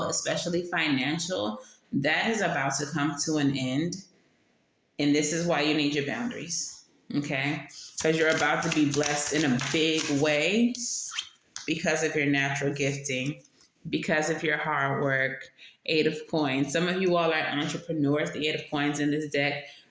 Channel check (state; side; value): identical; both; correlation 1.00